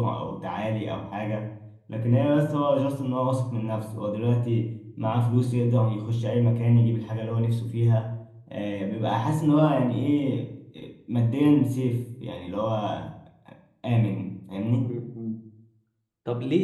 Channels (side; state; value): both; identical; correlation 1.00